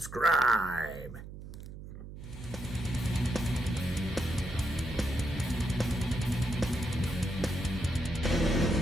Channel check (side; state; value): right; noise; hum, 12 dB below the sound